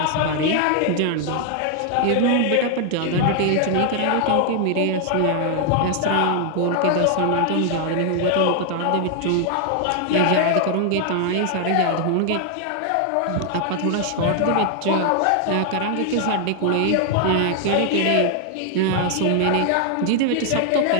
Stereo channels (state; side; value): different; both; correlation 0.00